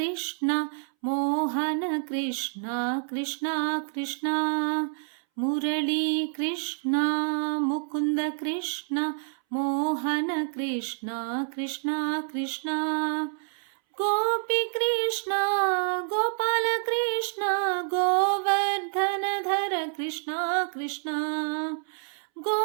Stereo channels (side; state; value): left; silent; 60 dB below the other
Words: మోహన కృష్ణ కృష్ణ కృష్ణ మురళీ కృష్ణ ముకుంద కృష్ణ మోహన కృష్ణ కృష్ణ కృష్ణ గోపి కృష్ణ గోపాల కృష్ణ గోవర్ధన ధర కృష్ణ కృష్ణ